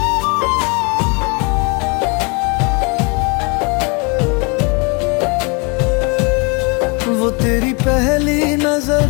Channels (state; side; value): quieter; right; 31.5 dB